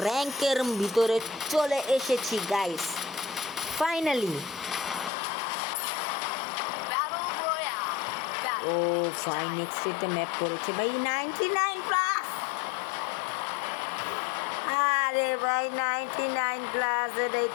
র্যাঙ্কের ভিতরে চলে এসেছি গাইস ফাইনালি। ও ফাইন নেক্সট একটা ম্যাপ পড়েছে ভাই 99 প্লাস। আরে ভাই 99 প্লাস এটাই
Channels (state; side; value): drops out; right; at 5.1 s